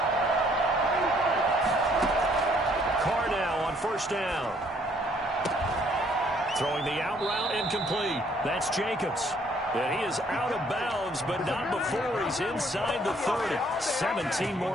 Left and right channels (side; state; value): both; normal; correlation 0.64